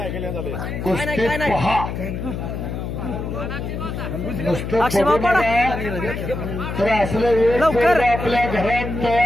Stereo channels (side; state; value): left; noise; hum, 5 dB below the sound